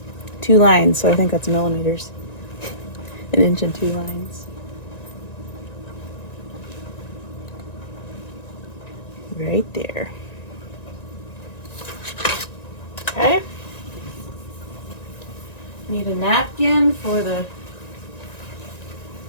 2 lines, so I think that's millimeters. 1 inch and 2 lines. Right there. Okay. Need a napkin for the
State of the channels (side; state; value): right; late; 1.9 ms